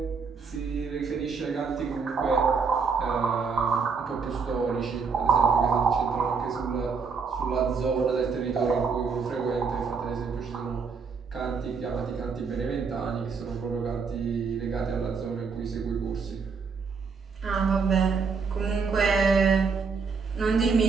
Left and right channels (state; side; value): quieter; left; 5.3 dB